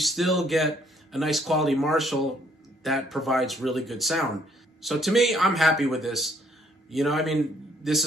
get a nice quality Marshall that provides really good sound. So to me, I'm happy with this. You know, I mean, this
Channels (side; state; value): both; normal; correlation 0.65